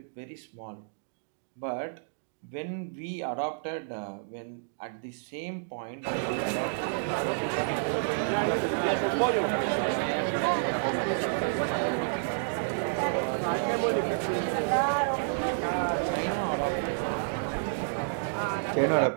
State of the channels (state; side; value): silent; left; digital silence